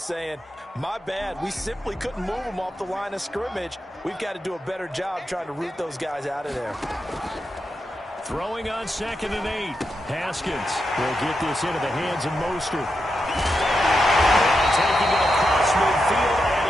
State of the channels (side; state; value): both; normal; correlation 0.86